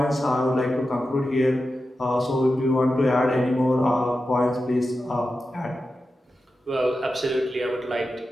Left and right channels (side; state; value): both; normal; correlation 0.91